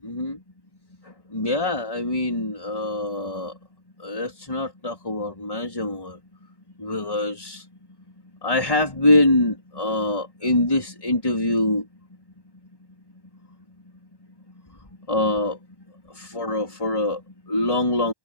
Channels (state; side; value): late; right; 1.1 ms